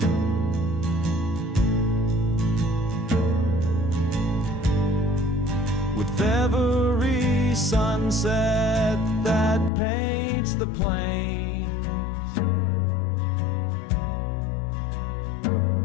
With every sunset that paints the plains,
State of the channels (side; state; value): right; drops out; at 9.7 s